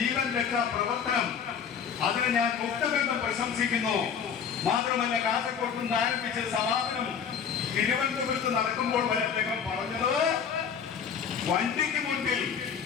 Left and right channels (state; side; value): quieter; right; 7.3 dB